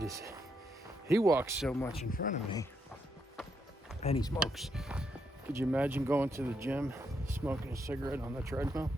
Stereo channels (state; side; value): normal; both; correlation 0.79